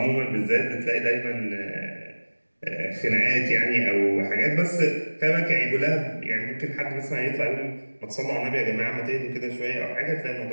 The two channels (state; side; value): inverted; both; correlation -1.00